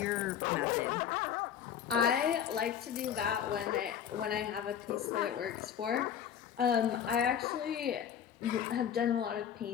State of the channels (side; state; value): right; quieter; 9.0 dB